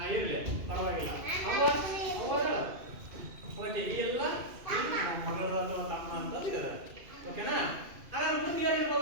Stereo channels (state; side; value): late; left; 2.5 ms